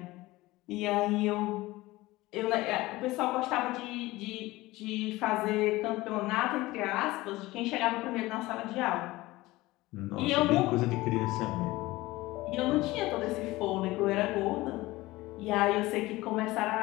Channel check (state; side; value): quieter; right; 19.3 dB